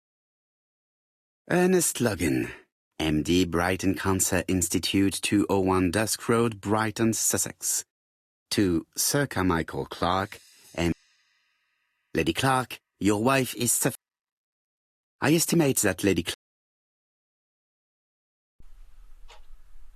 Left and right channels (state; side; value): identical; both; correlation 1.00